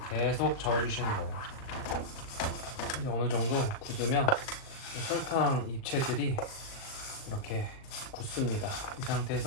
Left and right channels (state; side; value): late; right; 38 ms